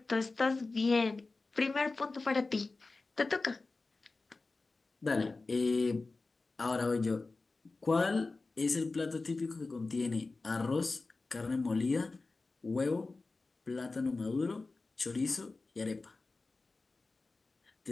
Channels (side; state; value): right; quieter; 3.6 dB